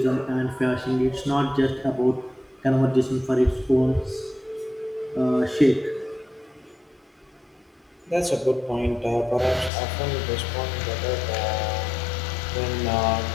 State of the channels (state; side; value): drops out; right; at 9.7 s